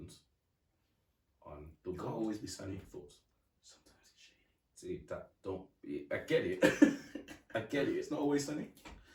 on the you can't world. always be sunny. Thoughts. Sometimes it's shady. See that don't. I get it. I get it. It's not always sunny.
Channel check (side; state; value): both; identical; correlation 1.00